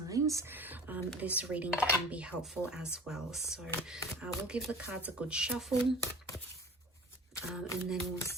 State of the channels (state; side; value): normal; both; correlation 0.40